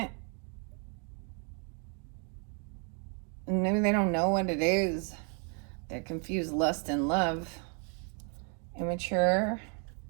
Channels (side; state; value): left; quieter; 39.1 dB